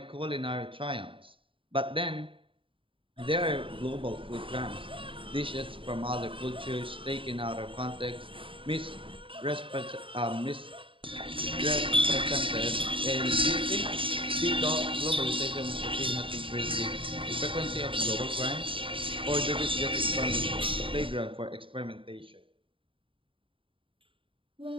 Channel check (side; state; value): left; late; 0.25 ms